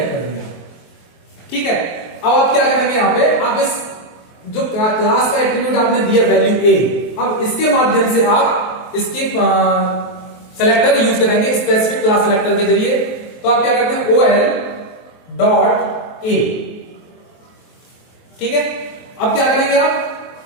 कर दिया, ठीक है। अब आप क्या करेंगे, यहाँ पे आप इस जो क्लास का एट्रीब्यूट आपने दिया वैल्यू A, अब इसके माध्यम से आप इसके सेलेक्टर यूज करेंगे, स्पेसिफिक क्लास सेलेक्टर के जरिए। तो आप क्या करते हैं OL.A, ठीक है। अब क्या करेंगे,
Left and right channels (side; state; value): right; late; 23 ms